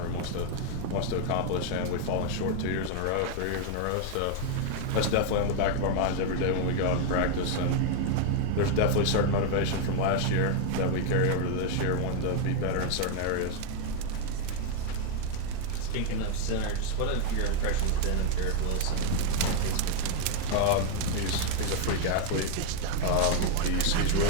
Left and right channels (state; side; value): different; both; correlation 0.00